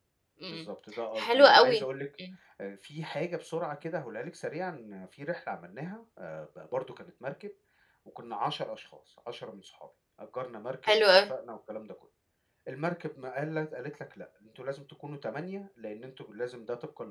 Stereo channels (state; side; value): identical; both; correlation 1.00